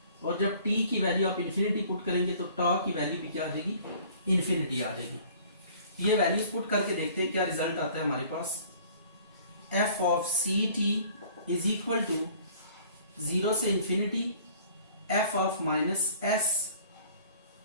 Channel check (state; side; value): inverted; both; correlation -0.52